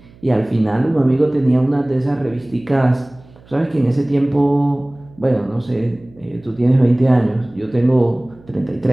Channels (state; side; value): noise; right; hum, 26 dB below the sound